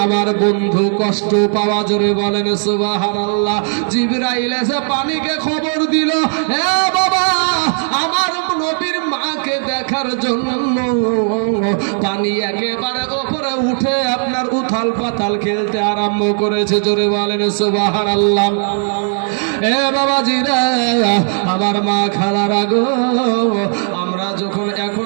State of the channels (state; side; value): silent; left; 56 dB below the other